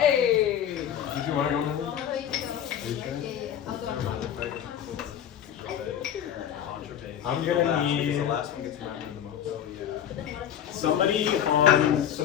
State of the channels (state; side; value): quieter; right; 9.8 dB